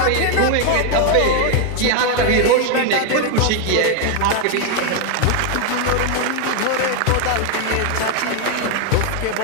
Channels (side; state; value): both; different; correlation 0.01